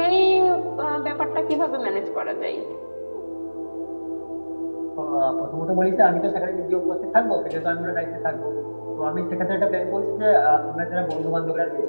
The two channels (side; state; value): both; inverted; correlation -1.00